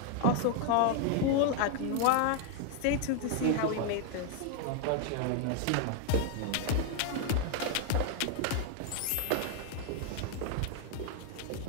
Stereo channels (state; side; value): different; both; correlation 0.00